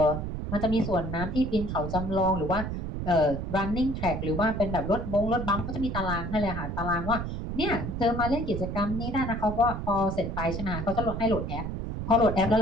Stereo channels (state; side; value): noise; right; rumble, 4 dB below the sound